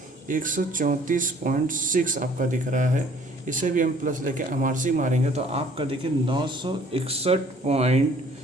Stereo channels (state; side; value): normal; both; correlation 0.56